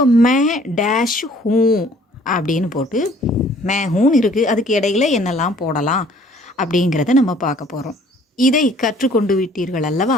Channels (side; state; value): both; normal; correlation 0.56